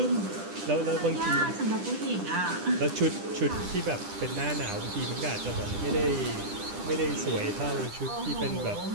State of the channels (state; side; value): late; left; 10 ms